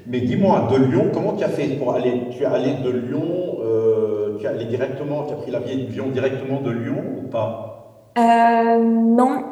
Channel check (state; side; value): identical; both; correlation 1.00